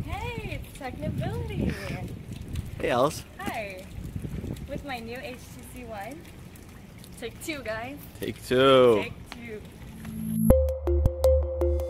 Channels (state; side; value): identical; both; correlation 1.00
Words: Hey, it's Technibility. Hey, Alice. Hi. With my new HTC One. Take two, guys. Take two. Take two.